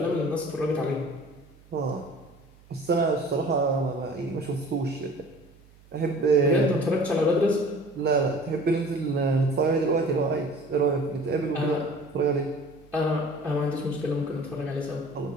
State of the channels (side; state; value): right; noise; hum, 26 dB below the sound